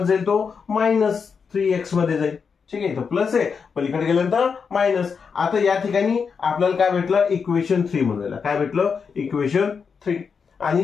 जाईल, तो -3x मध्ये जाईल. ठीक आहे, तो प्लस आहे, पलीकडे गेल्यानंतर मायनस. आता या ठिकाणी आपल्याला काय भेटलं, इक्वेशन 3 म्हणून काय भेटलं, इक्वेशन 3.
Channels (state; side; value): quieter; right; 5.9 dB